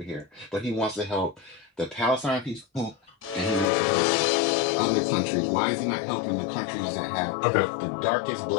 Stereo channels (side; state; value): right; drops out; at 3.7 s